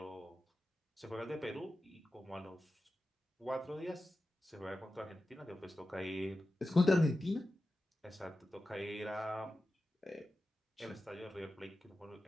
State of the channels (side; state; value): both; normal; correlation 0.93